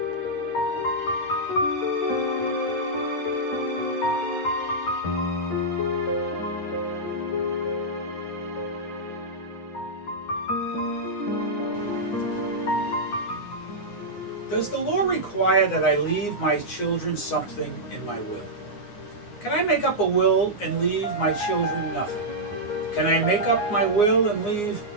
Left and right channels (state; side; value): late; right; 9.7 ms